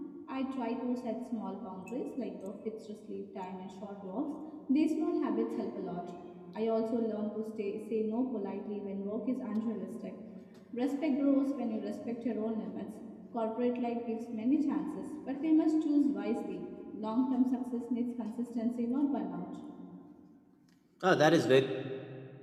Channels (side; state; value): both; identical; correlation 1.00